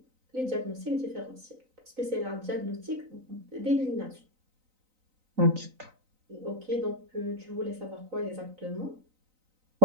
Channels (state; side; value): late; left; 3.9 ms